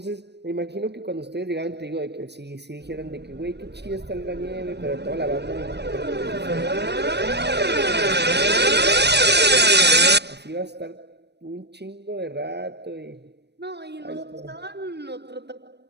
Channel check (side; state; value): left; late; 0.49 ms